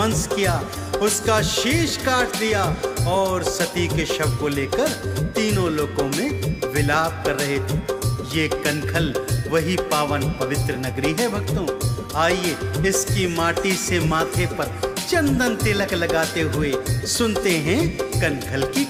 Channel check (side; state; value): both; identical; correlation 1.00